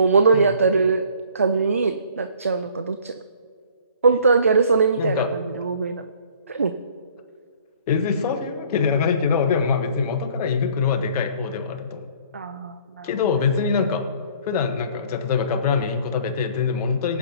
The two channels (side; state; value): both; inverted; correlation -0.55